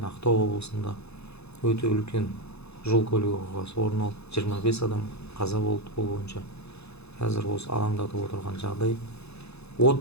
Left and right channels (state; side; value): late; right; 0.79 ms